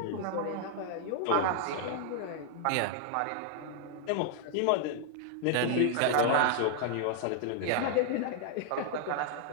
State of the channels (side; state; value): both; different; correlation -0.01